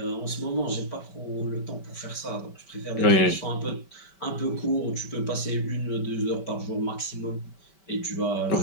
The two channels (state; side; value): late; right; 5.2 ms